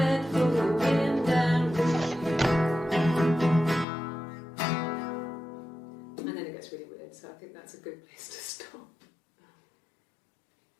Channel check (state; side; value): drops out; right; at 3.9 s